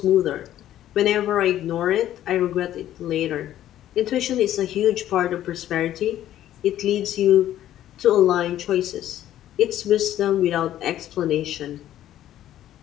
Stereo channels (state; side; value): quieter; right; 12.4 dB